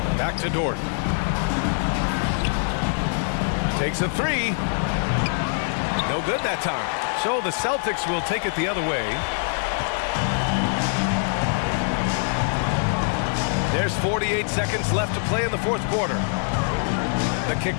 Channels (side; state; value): right; silent; 63 dB below the other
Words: Back to Dort. Takes a 3. No good that time. So the Celtics will take it the other way. There's 48 seconds left to play in the fourth quarter. The kick